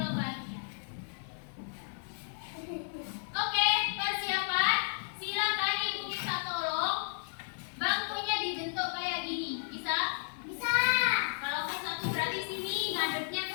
bagian. Oke, persiapan. Silakan ibu minta tolong bangkunya dibentuk kayak gini. Bisa? Bisa. Kalau ke 1 berarti sini ngadepnya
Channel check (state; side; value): silent; right; 56 dB below the other